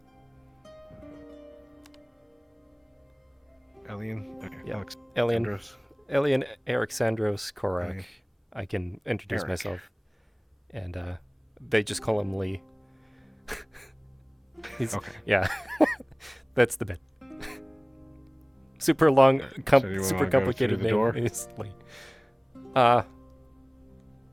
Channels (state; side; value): identical; both; correlation 1.00